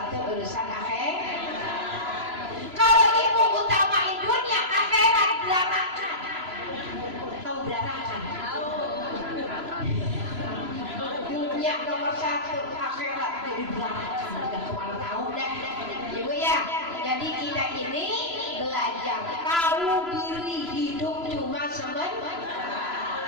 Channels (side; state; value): left; late; 3.0 ms